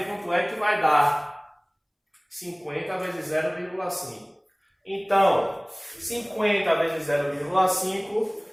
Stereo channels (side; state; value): both; identical; correlation 1.00